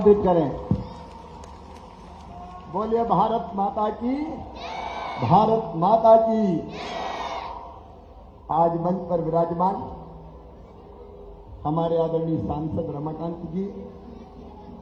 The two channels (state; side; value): identical; both; correlation 1.00